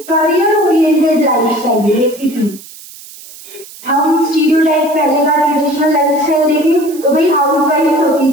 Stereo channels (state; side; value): noise; right; hiss, 18 dB below the sound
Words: करियर ओरिएंटेड लाइफ चाहिए बेसिकली, हम स्टीरियोटाइप पहले का ट्रेडिशनल लाइफस्टाइल देखें तो भाई हाउस वाइफ होती